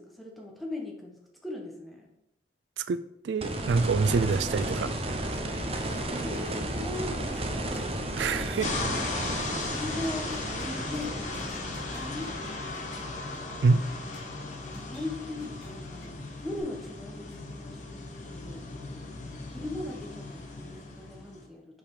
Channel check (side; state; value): both; normal; correlation 0.54